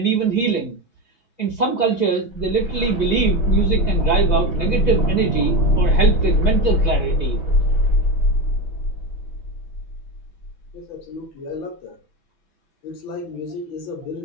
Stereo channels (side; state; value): right; late; 6.0 ms